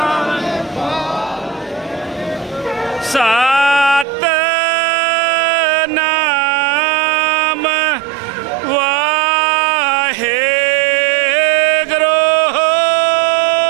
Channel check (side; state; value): left; drops out; at 4.0 s